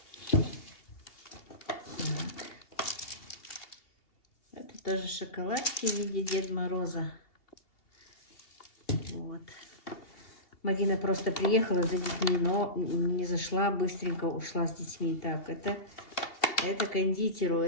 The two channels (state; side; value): late; right; 2.8 ms